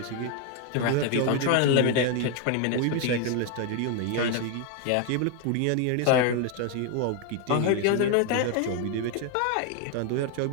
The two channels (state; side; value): different; both; correlation 0.01